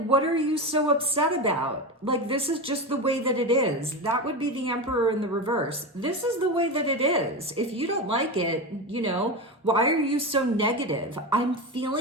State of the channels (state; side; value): normal; both; correlation 0.20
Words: what are you so upset about? Like, this is just the way that it is. That would be the Emperor in the reverse. This is the way that it is. If you don't like it, why are you so negative? I'm